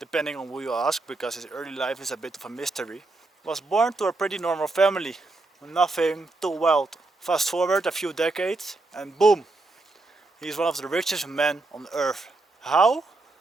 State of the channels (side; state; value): left; quieter; 3.2 dB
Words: on who you ask, because his early life is a bit of a mystery, was born to a pretty normal family, nothing too wild. Fast forward a few decades, and boom, he's one of the richest men on earth. How?